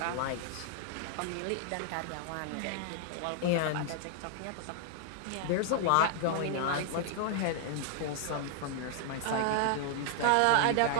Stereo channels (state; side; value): different; both; correlation 0.00